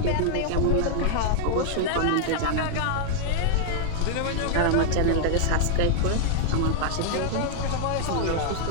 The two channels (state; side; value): different; both; correlation 0.00